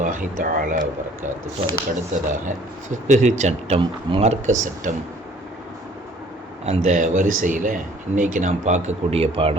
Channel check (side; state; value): both; normal; correlation 0.55